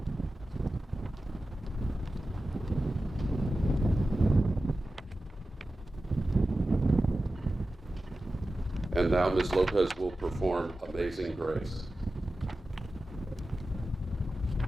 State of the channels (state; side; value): normal; both; correlation 0.94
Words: And now Ms. Lopez will perform Amazing Grace.